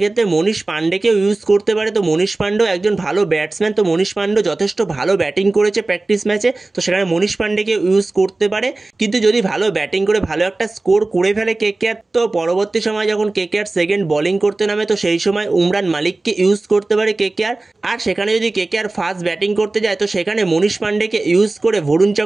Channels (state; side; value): quieter; left; 3.1 dB